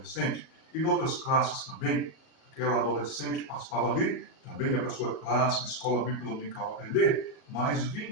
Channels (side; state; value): right; late; 37 ms